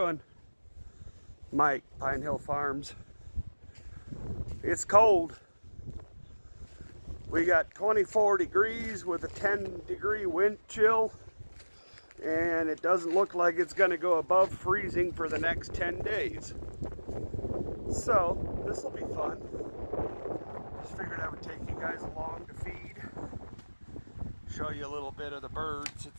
Mike, Pine Hill Farms. It's cold. We got 24 degrees with a 10-degree wind chill, and it doesn't look like it's going to go above freezing for the next 10 days. So this will be fun. Just figured I would take you guys along to feed, show you a little bit of the birds.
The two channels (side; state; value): both; inverted; correlation -1.00